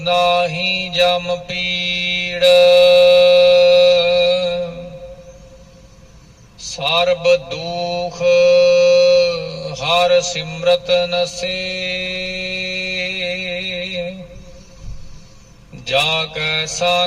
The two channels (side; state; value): both; identical; correlation 1.00